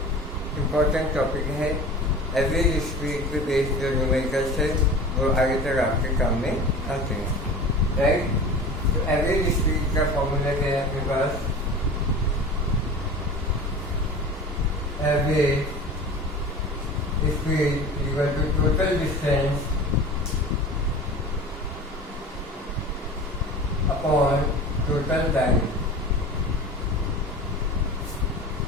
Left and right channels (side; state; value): both; normal; correlation 0.36